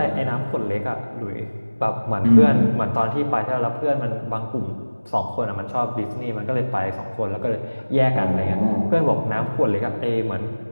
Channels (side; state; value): both; inverted; correlation -1.00